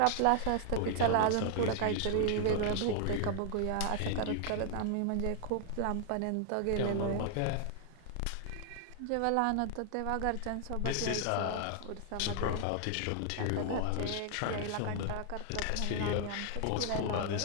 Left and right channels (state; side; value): different; both; correlation 0.00